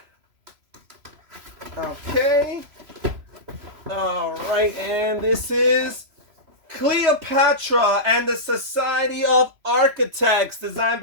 Okay. All right, and this is Cleopatra and the Society of Architects, designed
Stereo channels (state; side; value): late; left; 3.0 ms